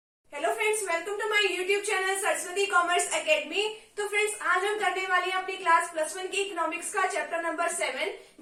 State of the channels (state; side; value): identical; both; correlation 1.00